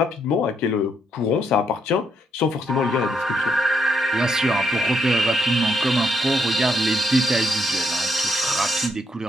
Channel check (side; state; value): both; normal; correlation 0.76